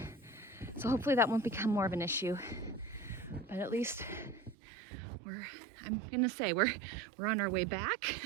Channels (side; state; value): left; drops out; at 4.5 s